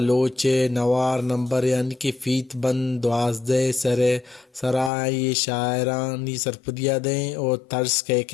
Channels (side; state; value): right; drops out; at 4.9 s